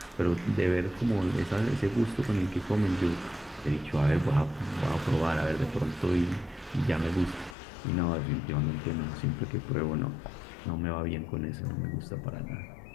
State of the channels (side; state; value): right; drops out; at 7.6 s